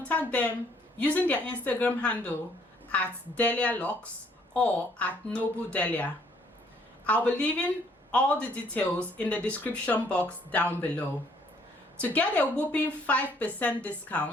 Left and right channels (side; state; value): both; normal; correlation 0.64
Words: them using their Instagram handle at Delia Lux or at Noble Delia. I'll be leaving all the details in the description box down below. To get a whopping 5%